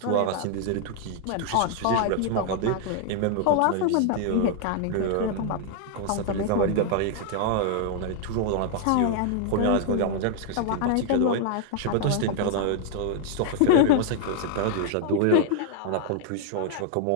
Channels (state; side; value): different; both; correlation 0.00